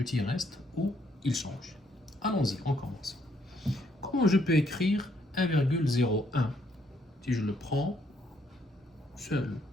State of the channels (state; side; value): normal; both; correlation 0.71